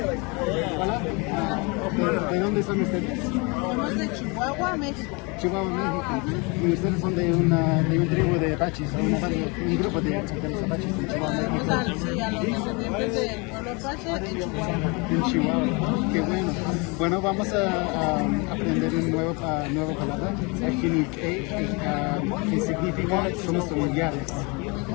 Hola. ¿De dónde son ustedes? Somos de Chihuahua, México. Chihuahua, México. Y ustedes son de un tribu de Apaches, un grupo de los Apaches de Chihuahua, México. Sí, a los descendientes del pueblo Apache en Chihuahua. En Chihuahua, qué bueno. Bueno, vamos a aprender una nueva palabra, Ahiniilk'éí, que significa somos familiares.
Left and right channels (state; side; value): quieter; right; 29.4 dB